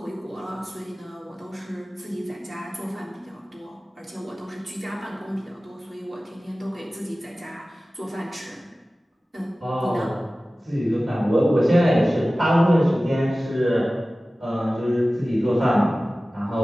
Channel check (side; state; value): both; normal; correlation 0.97